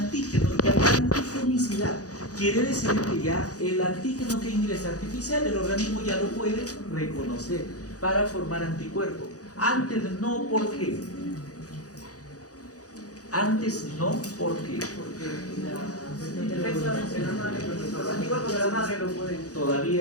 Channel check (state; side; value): late; right; 0.67 ms